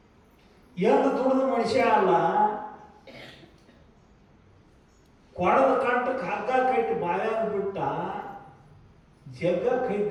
ಏನು ದುಡಿದ ಮನುಷ್ಯ ಅಲ್ಲ, ಕೊಡದ ಕಂಟಕ್ಕೆ ಹಗ್ಗ ಕಟ್ಟಿ ಬಾಯಾಗ ಬಿಟ್ಟ, ಜಗ್ಗ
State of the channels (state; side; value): identical; both; correlation 1.00